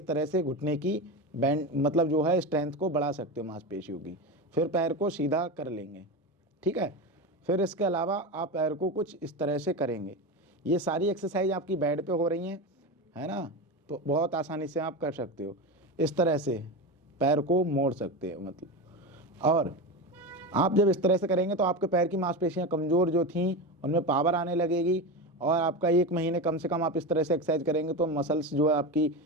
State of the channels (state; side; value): normal; both; correlation 0.20